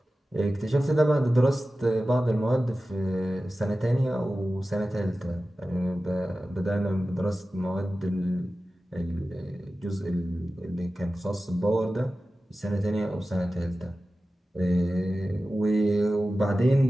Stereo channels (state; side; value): normal; both; correlation 0.95